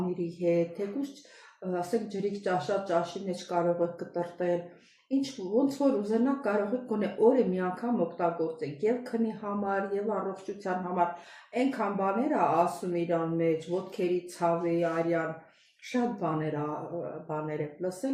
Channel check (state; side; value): identical; both; correlation 1.00